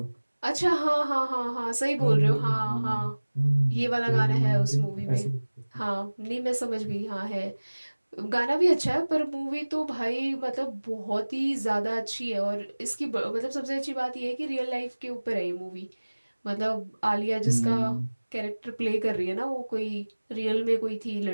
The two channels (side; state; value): both; inverted; correlation -1.00